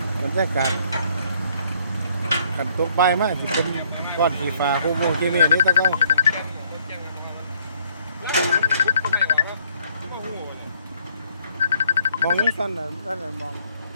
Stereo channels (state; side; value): inverted; both; correlation -0.65